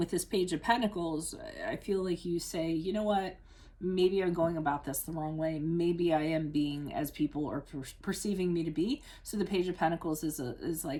this Page of Pentacles, I feel like you say, you know what? Maybe I'm going about this the wrong way. Maybe I am being as people are perceiving me to be. So the Page of Pentacles is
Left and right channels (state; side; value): identical; both; correlation 1.00